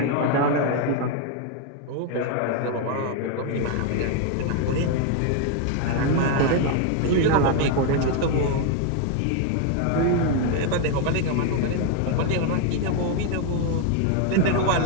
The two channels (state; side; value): different; both; correlation 0.01